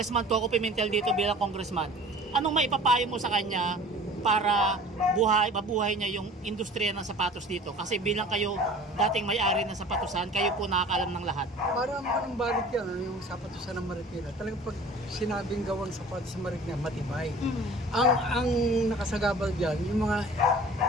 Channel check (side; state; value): both; normal; correlation 0.45